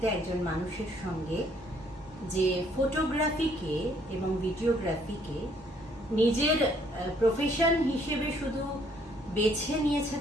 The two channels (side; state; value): both; normal; correlation 0.65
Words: একজন মানুষের সঙ্গে যে ফটোগ্রাফিকে এবং ভিডিওগ্রাফিকে নিজের প্রফেশন হিসেবে শুধু বেছে নিয়েছে